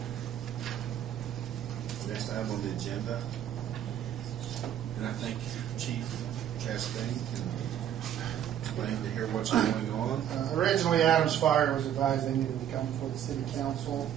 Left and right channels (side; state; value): left; quieter; 10.3 dB